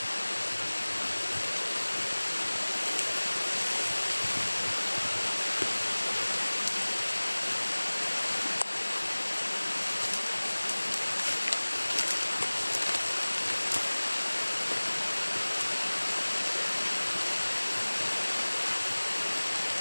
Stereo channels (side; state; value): both; inverted; correlation -1.00